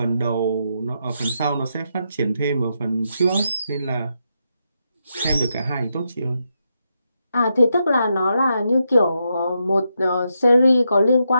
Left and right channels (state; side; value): inverted; both; correlation -0.83